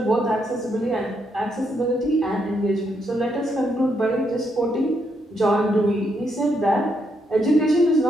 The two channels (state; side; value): normal; both; correlation 0.77